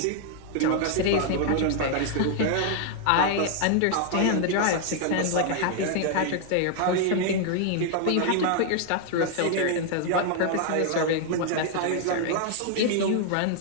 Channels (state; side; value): different; both; correlation 0.00